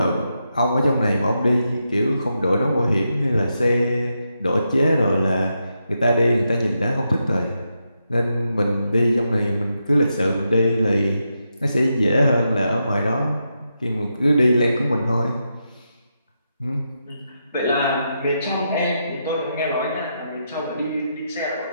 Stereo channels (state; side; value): inverted; both; correlation -0.84